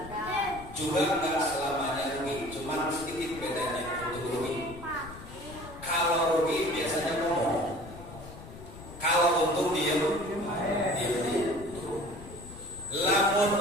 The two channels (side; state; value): left; noise; rumble, 15 dB below the sound